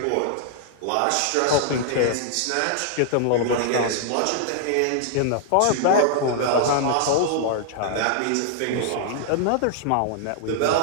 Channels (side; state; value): both; different; correlation -0.01